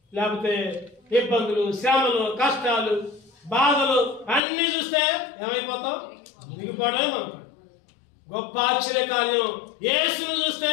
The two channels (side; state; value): right; drops out; at 4.4 s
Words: లేకపోతే ఇబ్బందులు, శ్రమలు, కష్టాలు, బాధలు అన్ని చూస్తే ఏమైపోతాం? దిగిపోవడమే మనకు గొప్ప ఆశ్చర్య కార్యం. యేసును చూస్తే